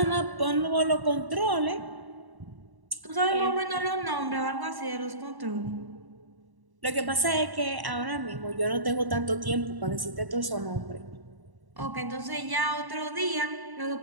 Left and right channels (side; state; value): left; late; 1.1 ms